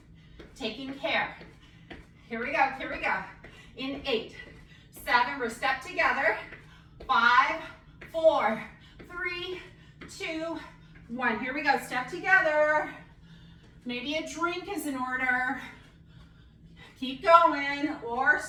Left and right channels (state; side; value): identical; both; correlation 1.00